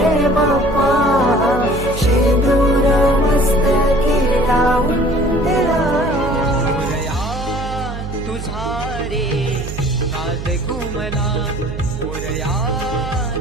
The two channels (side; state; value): right; noise; hum, 8 dB below the sound